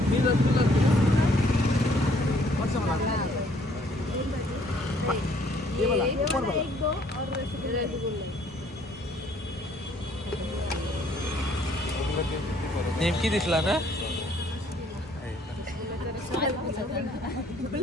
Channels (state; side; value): normal; both; correlation 0.62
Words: ये वाला ऊपर वाला. नेमकी दिसला ना.